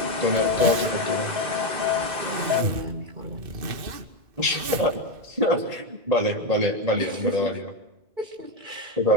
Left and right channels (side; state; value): left; late; 2.5 ms